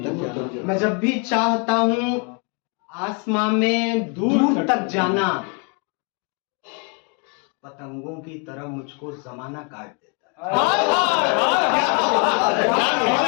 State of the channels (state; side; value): quieter; right; 34.5 dB